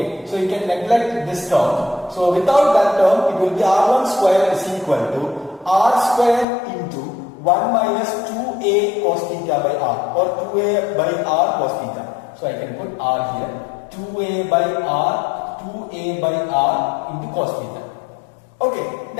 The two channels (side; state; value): right; drops out; at 6.5 s